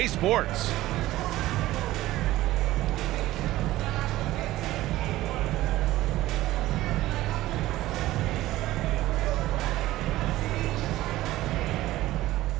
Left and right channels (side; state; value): left; quieter; 16.2 dB